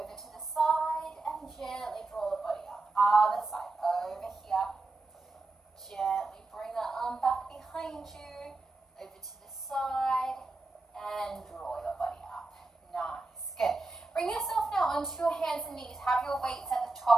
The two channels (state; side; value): quieter; left; 3.3 dB